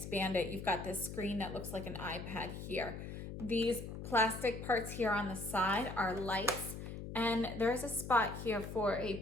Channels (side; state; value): left; noise; hum, 8 dB below the sound